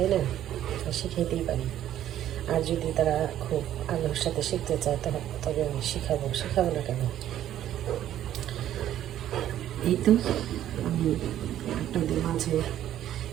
না? শিখাইতেই পারি। আর যদি তারা খুব আগ্রহের সাথে শিখতে চায় তবে আমি শেখাবো না কেন? এই তো আমি আপনাদের মাঝে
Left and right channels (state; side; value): quieter; left; 11.8 dB